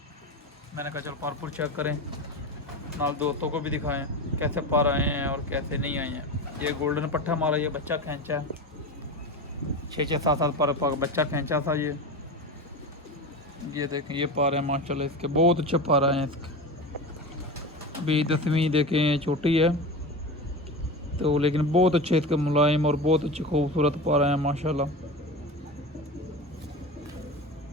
मैंने कहा चल पारपुर चेक करें, नाल दोस्तों को भी दिखाएं कैसे पार आए हैं और कैसे नहीं आए हैं। ये गोल्डन पट्टा मारा, ये बच्चा खींचा है 6-7 पर बच्चा खींचा था ये देखें ये पार है माशाल्लाह, इसके बहुत अच्छे पार आए हैं। इसके अभी 10वीं देखें छोटी है तो, लेकिन बहुत अच्छे इसके मुलायम और बहुत अच्छे खूबसूरत पार आए हैं माशाल्लाह।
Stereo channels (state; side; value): normal; both; correlation 0.26